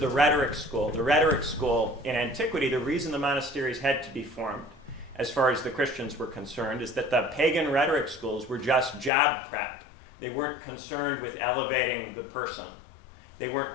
rhetoric school. The rhetoric school in antiquity, the reason the monasteries had to be formed, as far as the Christians were concerned, is that the pagan rhetoric schools were just job prep. They weren't concerned with elevating the person. They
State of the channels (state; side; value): drops out; right; at 9.1 s